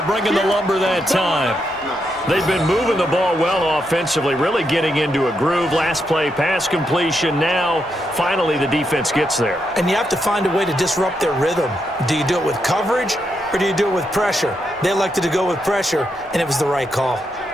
bringing the lumber that time. They've been moving the ball well offensively, really getting into a groove. Last play, pass completion. Now, finally, the defense gets there. And you have to find a way to disrupt their rhythm. Do you do it with coverage, or do you do it with pressure? They elected to go with pressure, and it was the right call.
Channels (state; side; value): noise; left; rumble, 27 dB below the sound